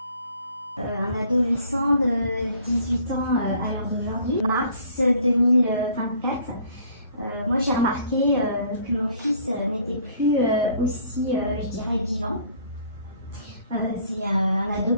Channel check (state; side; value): inverted; both; correlation -0.57